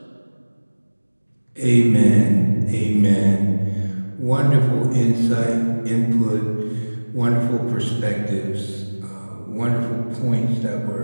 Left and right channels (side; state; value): both; inverted; correlation -1.00